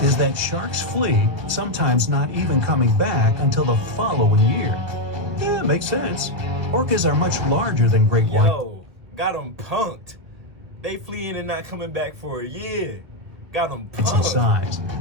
is that sharks flee, sometimes not even coming back until the following year. Yeah, makes sense. Orcas are much larger than great white. Yo, got them punked. They fleeing and not coming back for a year. Got them punked. Size.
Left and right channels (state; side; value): late; left; 1.7 ms